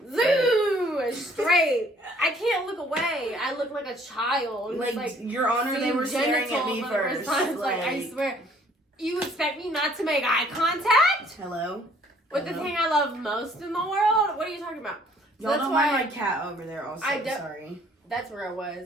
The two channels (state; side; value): normal; both; correlation 0.59